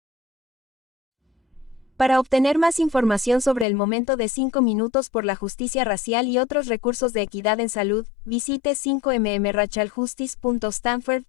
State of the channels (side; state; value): right; drops out; at 3.7 s